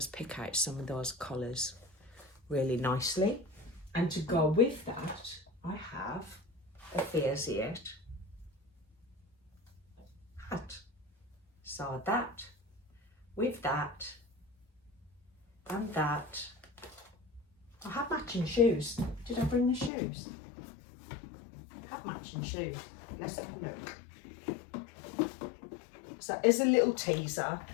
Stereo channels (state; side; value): drops out; right; at 19.9 s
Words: pick out some of those colours really nicely. And to go with that, I have a Fairsiet hat. So that, with that, and that. I have matching shoes. Did I bring the shoes? I have matching shoes. Let's have a look. So as a little teaser,